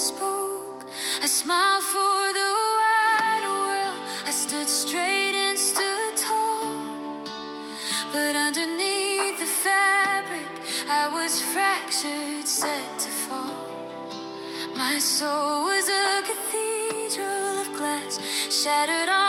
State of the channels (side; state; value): both; identical; correlation 1.00